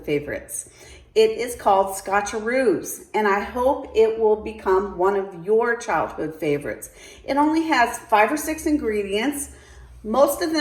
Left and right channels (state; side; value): identical; both; correlation 1.00